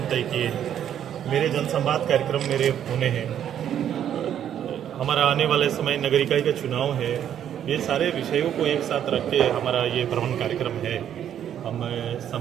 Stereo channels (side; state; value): left; quieter; 9.9 dB